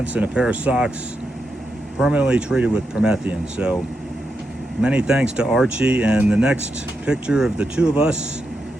and a pair of socks permanently treated with Promethean. So many thanks to Archie. And the next picture of the 2 of us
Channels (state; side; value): normal; both; correlation 0.85